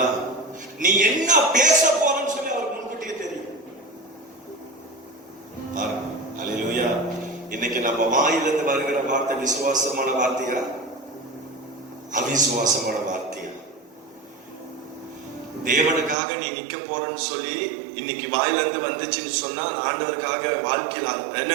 நீ என்ன பேச போறன்னு சொல்லி அவருக்கு முன்கூட்டியே தெரியும். அல்லேலூயா. இன்னைக்கு நம்ம வாயிலிருந்து வருகிற வார்த்தை விசுவாசமான வார்த்தையா, அவிசுவாசமான வார்த்தையா? தேவனுக்காக நீ நிக்க போறன்னு சொல்லி இன்னைக்கு வாயிலிருந்து வந்துச்சுன்னு சொன்னா, ஆண்டவருக்காக வாழ்க்கையில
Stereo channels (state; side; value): drops out; left; at 16.2 s